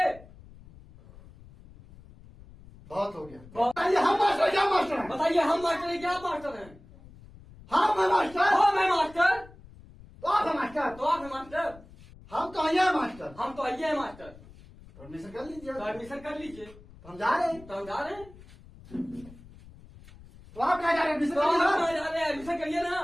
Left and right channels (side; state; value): left; noise; rumble, 21 dB below the sound